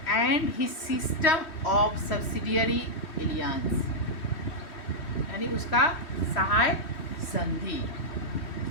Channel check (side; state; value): right; late; 3.1 ms